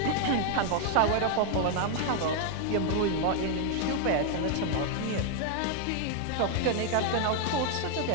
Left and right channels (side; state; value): both; different; correlation 0.00